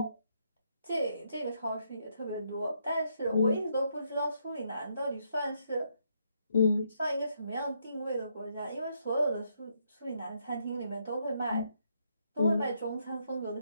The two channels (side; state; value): both; inverted; correlation -0.75